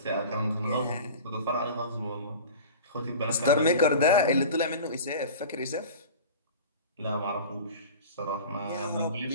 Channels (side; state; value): both; inverted; correlation -0.36